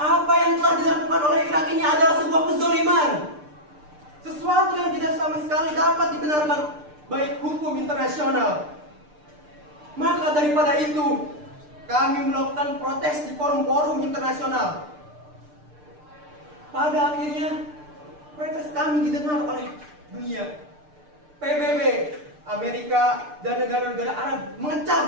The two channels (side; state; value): left; late; 6.7 ms